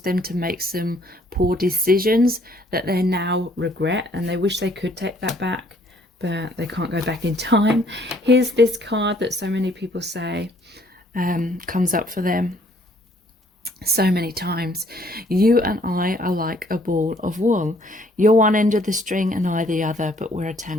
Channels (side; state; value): both; normal; correlation 0.63